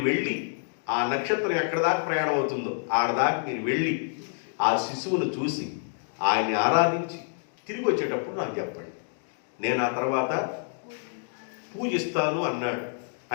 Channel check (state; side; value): silent; right; digital silence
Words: వెళ్ళి ఆ నక్షత్రం ఎక్కడ దాకా ప్రయాణం అవుతుందో ఆడదాకా మీరు వెళ్ళి ఆ శిశువును చూసి ఆయన్ని ఆరాధించి తిరిగి వచ్చేటప్పుడు నాకు చెప్పండి, నేను ఆ తర్వాత పూజిస్తాను అన్నాడు.